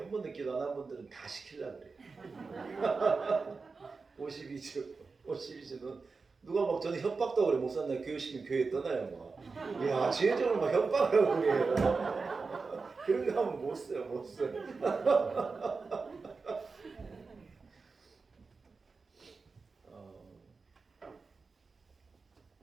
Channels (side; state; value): left; quieter; 4.4 dB